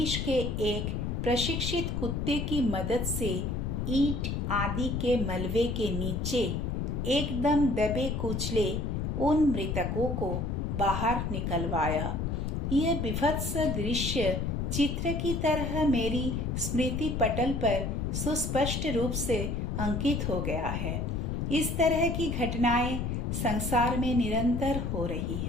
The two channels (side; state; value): left; noise; rumble, 1 dB below the sound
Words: के एक प्रशिक्षित कुत्ते की मदद से ईंट आदि के मलबे के नीचे एकदम दबे कुचले उन मृतकों को बाहर निकलवाया। यह विभत्स दृश्य चित्र की तरह मेरी स्मृति पटल पर सुस्पष्ट रूप से अंकित हो गया है। इस तरह की घटनाएं संसार में निरंतर हो रही